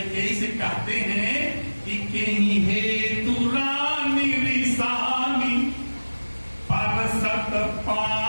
से कहते हैं कि कहीं हेतु रानी रिसानी परसत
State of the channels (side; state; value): both; inverted; correlation -1.00